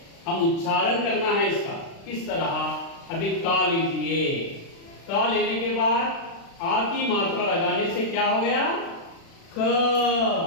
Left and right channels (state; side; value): late; right; 36 ms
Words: हम उच्चारण करना है इसका किस तरह. अभी का लीजिए. का लेने के बाद आ की मात्रा लगाने से क्या हो गया? क.